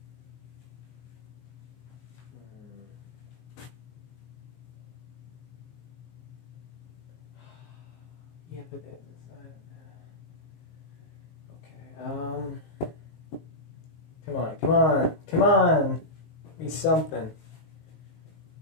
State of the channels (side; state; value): right; late; 19 ms